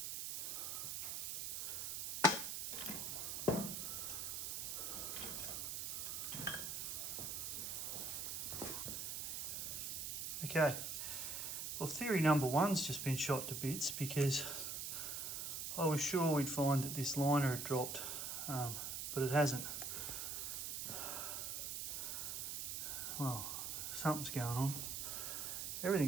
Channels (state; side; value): noise; right; hiss, 3 dB below the sound